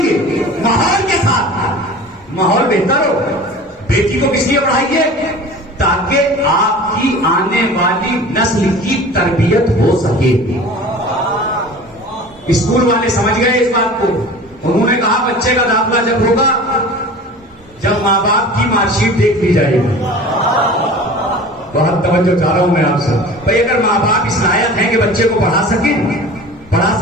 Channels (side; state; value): both; normal; correlation 0.39